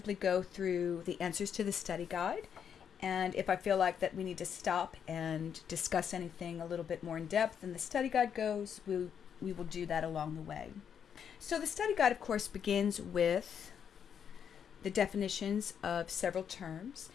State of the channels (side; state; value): right; quieter; 7.9 dB